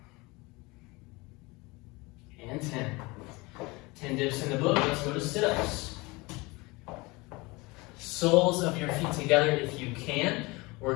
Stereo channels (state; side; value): quieter; right; 24.3 dB